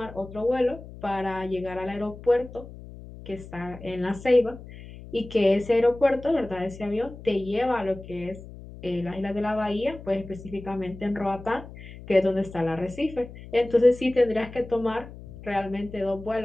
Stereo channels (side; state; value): left; noise; hum, 15 dB below the sound